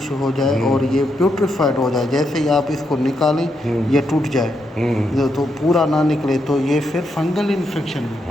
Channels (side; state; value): both; normal; correlation 0.81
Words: हो जाए और ये प्यूट्रिफाइड हो जाए, जैसे ही आप इसको निकालें ये टूट जाए तो पूरा ना निकले, तो ये फिर फंगल इन्फेक्शन